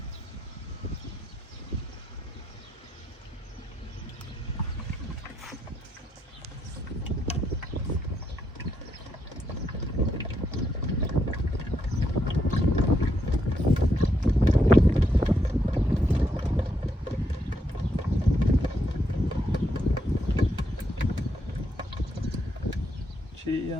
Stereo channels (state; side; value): normal; both; correlation 0.78